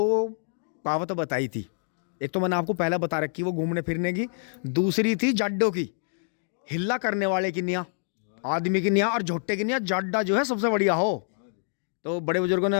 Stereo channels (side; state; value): right; silent; digital silence